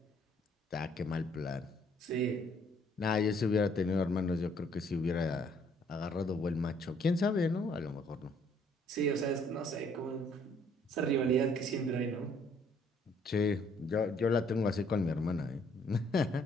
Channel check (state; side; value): normal; both; correlation 0.64